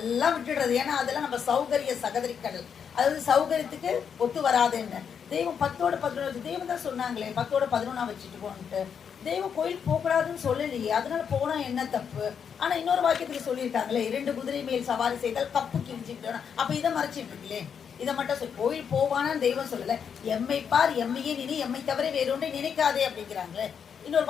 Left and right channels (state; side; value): quieter; right; 7.3 dB